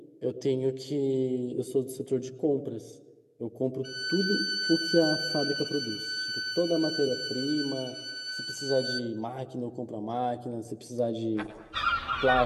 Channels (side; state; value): both; identical; correlation 1.00